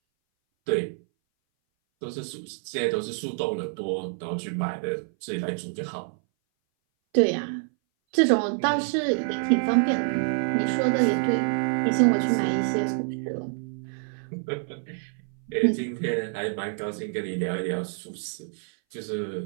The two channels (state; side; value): silent; left; 59 dB below the other